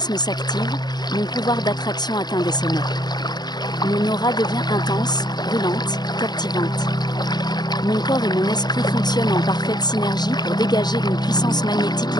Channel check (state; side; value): late; right; 0.20 ms